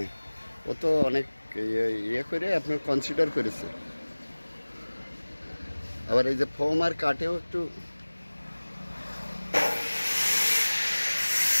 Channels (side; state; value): both; inverted; correlation -1.00